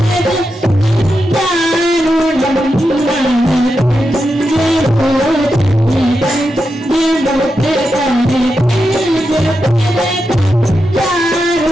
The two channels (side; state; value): both; normal; correlation 0.87